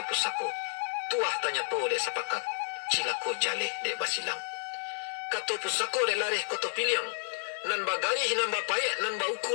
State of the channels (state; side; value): silent; right; 57 dB below the other